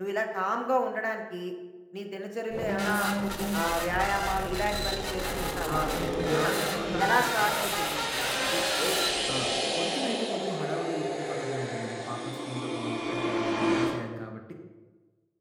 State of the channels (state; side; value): identical; both; correlation 1.00